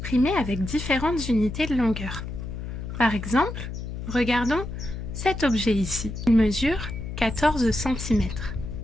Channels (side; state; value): left; noise; hum, 7 dB below the sound